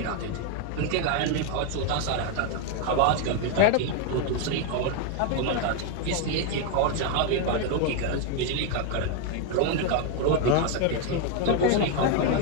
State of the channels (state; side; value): different; both; correlation 0.01